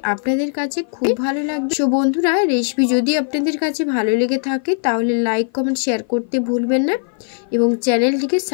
আপনাদের কাছে খুব ভালো লাগবে। সো বন্ধুরা, রেসিপি যদি আপনাদের কাছে ভালো লেগে থাকে তাহলে লাইক কমেন্ট শেয়ার করতে ভুলবেন না এবং চ্যানেলটিকে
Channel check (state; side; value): silent; right; 55 dB below the other